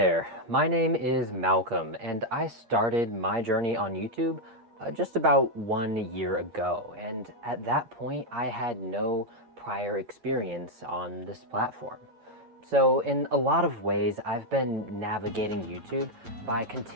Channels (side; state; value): left; late; 8.6 ms